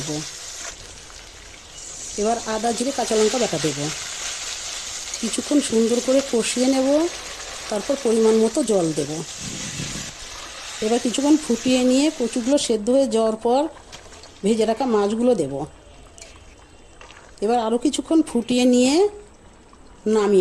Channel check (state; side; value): identical; both; correlation 1.00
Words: এবার আদা জিরে কাঁচা লঙ্কা বাটা দেব। কিছুক্ষণ সুন্দর করে কষিয়ে নেব। তারপর পরিমাণ মতো জল দেব। এবার কিছুক্ষণ ফুটিয়ে নিয়ে কচুগুলো সেদ্ধ হয়ে যাওয়ার পর ভেজে রাখা মাছগুলো দেব। এবার আরও কিছুক্ষণ ফুটিয়ে নিয়ে